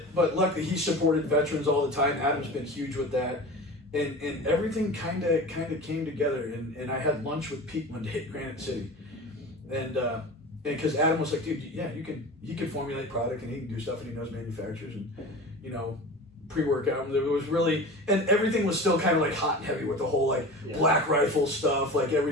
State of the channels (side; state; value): both; normal; correlation 0.34